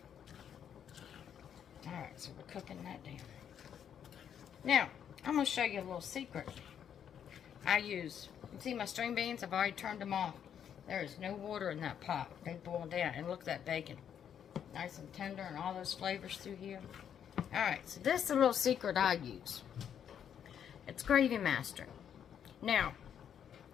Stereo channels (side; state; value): right; quieter; 8.8 dB